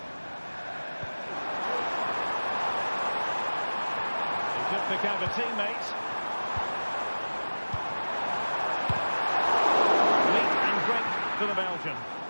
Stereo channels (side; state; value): both; inverted; correlation -1.00